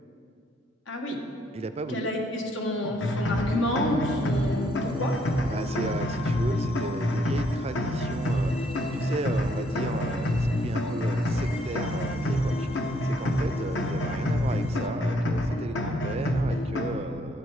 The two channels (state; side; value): normal; both; correlation 0.69